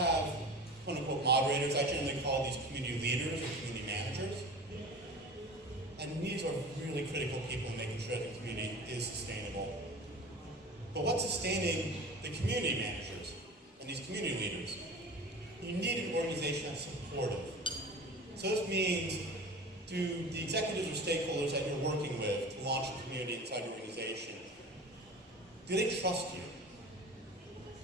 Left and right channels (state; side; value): normal; both; correlation 0.36